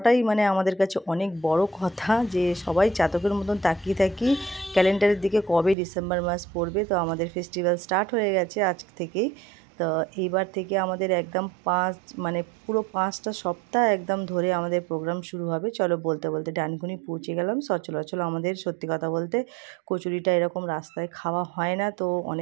মানে আমাদের কাছে অনেক বড় কথা, যে সবাই চাতকের মতন তাকিয়ে থাকি ক্যালেন্ডারের দিকে কবে ডিসেম্বর মাস পড়বে। তো আমাদের ফেস্টিভ্যাল স্টার্ট হয়ে গেছে আজ থেকেই। তো এইবার থেকে আমাদের একদম পুরো 5টা সপ্তাহ একদম ধরে আমাদের প্রোগ্রাম শুরু হবে। চলো বলতে বলতে ডানকুনি পৌঁছে গেলাম। সচরাচর আমাদের সত্যি কথা বলতে কচুরিটা এরকম রাস্তায় খাওয়া হয় না, তো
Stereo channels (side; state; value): left; drops out; at 5.8 s